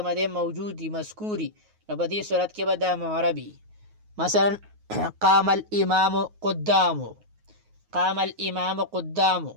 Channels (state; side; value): late; left; 9.4 ms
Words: دی موجود وي مذکوري نو په دې صورت کې به دا معربي. مثلا قام الامام قدامه، قام الامام قدامه